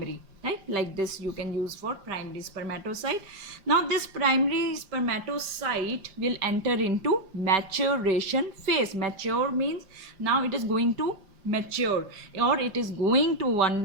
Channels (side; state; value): left; late; 5.0 ms